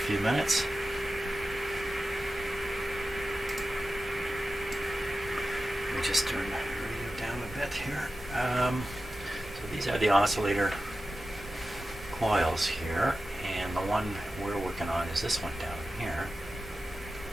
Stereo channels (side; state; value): both; normal; correlation 0.93